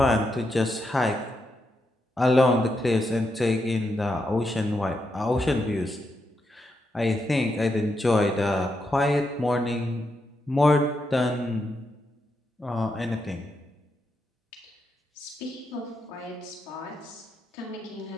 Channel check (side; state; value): both; normal; correlation 0.83